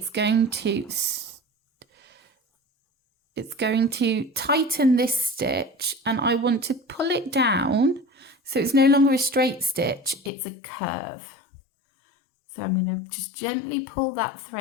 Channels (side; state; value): right; drops out; at 10.3 s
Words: going to tighten this stitch, and I want to pull it down so it's no longer a straight stitch, it's a curve. So I'm going to just gently pull that